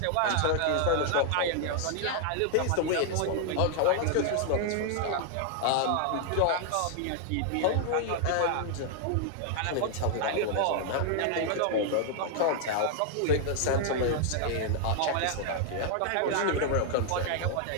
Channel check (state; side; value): different; both; correlation 0.00